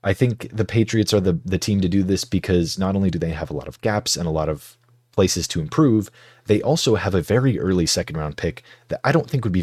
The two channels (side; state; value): both; identical; correlation 1.00